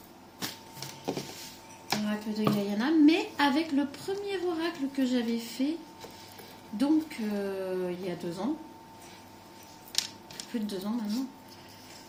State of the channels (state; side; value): identical; both; correlation 1.00